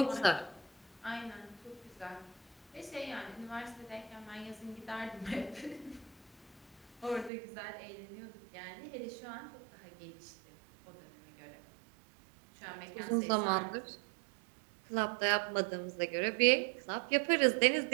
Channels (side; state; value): left; drops out; at 7.3 s